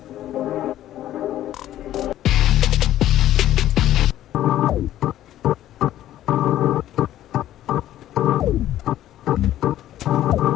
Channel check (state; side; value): quieter; right; 12.9 dB